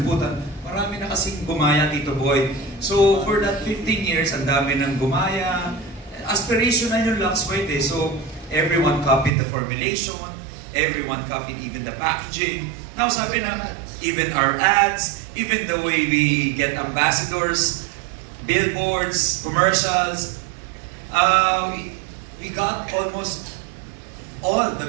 Marami na kasing gumaya, Tito Boy. So, for that 15 years, ang dami nang gumaya. Aspirational yung Lux White eh. So, everyone copied the formulation, everyone copied even the packaging. Now, sabi na, even our ads, even the way we get ambassadors, billboards, commercials, we got almost all the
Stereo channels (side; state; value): left; drops out; at 9.3 s